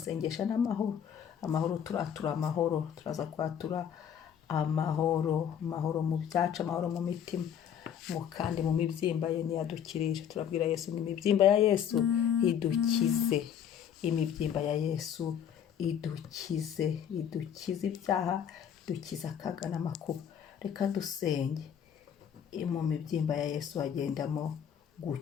n'amahoro. Amahoro, turatura amahoro, turaza kwatura amahoro, amahoro mu byacu, amahoro mu mitima, kandi mu mibyimba ye niyo adukirisha. Turabwira Yesu ngo imibyimba ya Yesu idukize, imibyimba ya Yesu idukize, idukize ibyaha, idukize akaga n'amakuba. Reka dusenge. Mu mibyimba ya Yesu hagendamo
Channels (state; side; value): quieter; right; 8.7 dB